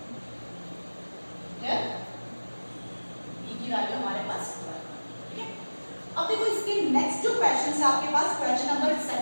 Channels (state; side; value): inverted; both; correlation -1.00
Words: Clear, b की वैल्यू हमारे पास 12. ठीक है, अब देखो इसके नेक्स्ट जो क्वेश्चन है आपके पास, question number